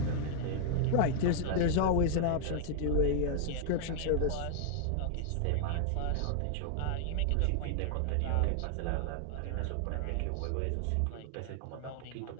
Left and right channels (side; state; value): both; different; correlation -0.01